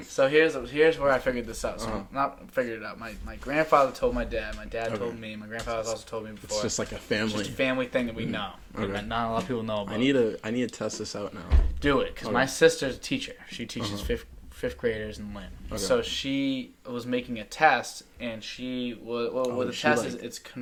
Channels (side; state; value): both; identical; correlation 1.00